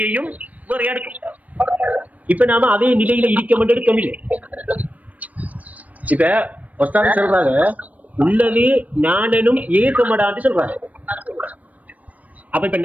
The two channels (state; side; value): late; left; 0.072 ms